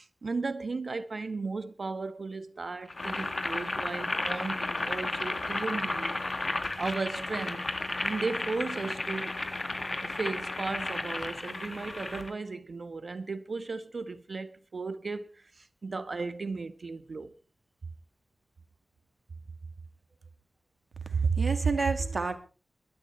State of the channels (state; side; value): normal; both; correlation 0.93